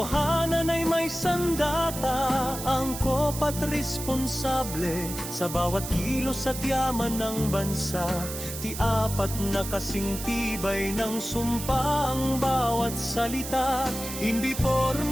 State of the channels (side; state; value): right; noise; hiss, 8 dB below the sound